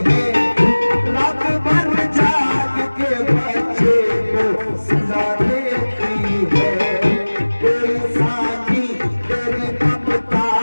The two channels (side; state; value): both; inverted; correlation -1.00